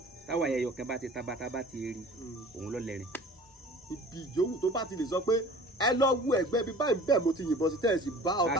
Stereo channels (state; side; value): normal; both; correlation 0.45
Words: táwọ̀ ayẹyọ kan bá ti taba tá bá ti rí òun ló lẹ́rìn. ibi yòówù tó bá ti lè sọ pé ẹ lọ wú ẹgbẹ́ bí báyìí bẹ́ẹ̀ mo ti yìnbọn sí tẹ́ẹ̀sì bá